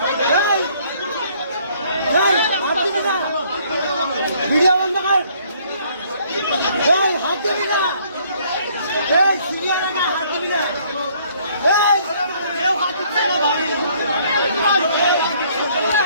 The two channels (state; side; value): inverted; both; correlation -0.63